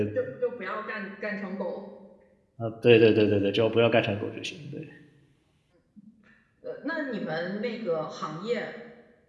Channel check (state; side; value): identical; both; correlation 1.00